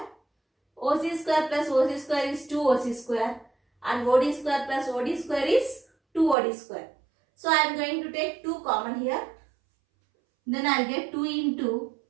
OC square plus OC square is 2OC square, and OD square plus OD square is 2OD square. So I am going to take 2 common here. Then I will get 2 into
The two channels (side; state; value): left; drops out; at 6.4 s